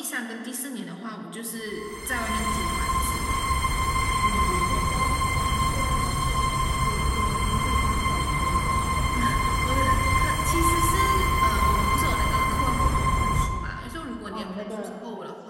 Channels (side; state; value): both; identical; correlation 1.00